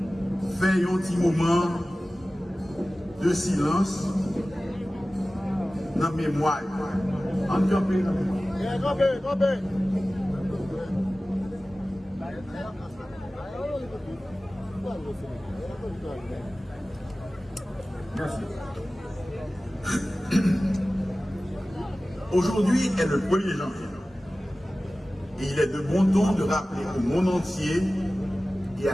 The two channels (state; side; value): normal; both; correlation 0.96